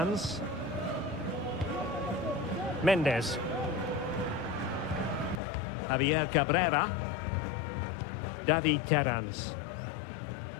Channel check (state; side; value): drops out; right; at 5.4 s